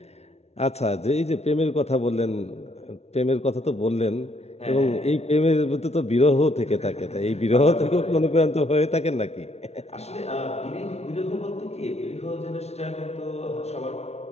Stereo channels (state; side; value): late; right; 0.31 ms